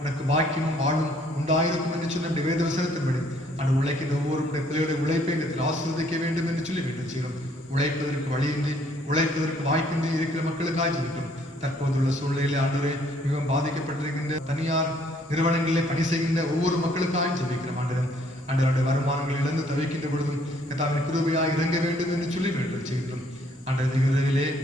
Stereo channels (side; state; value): both; normal; correlation 0.64